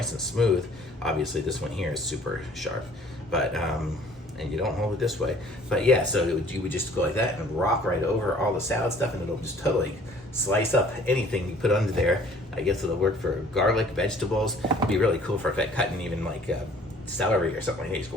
and smooth. Obviously this one here is super sharp, but and you don't hold it this way. But yeah, so you would just go like that and rock right over all the salad stuff, and it'll just totally slice up anything you put under there. I guess it'll work for garlic, vegetables. It'd be really cool for cutting even like celery or something like that. You just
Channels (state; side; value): normal; both; correlation 0.54